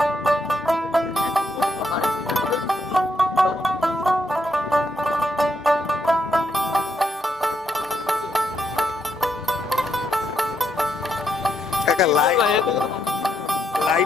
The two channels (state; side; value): normal; both; correlation 0.78